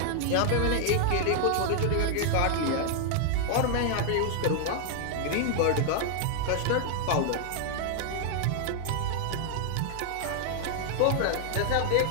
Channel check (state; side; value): different; both; correlation 0.00